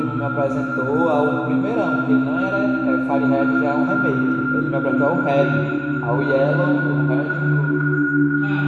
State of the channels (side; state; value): both; identical; correlation 1.00